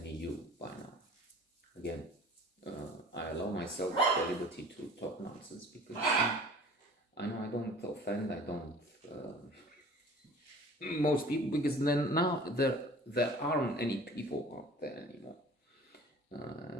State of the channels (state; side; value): normal; both; correlation 0.45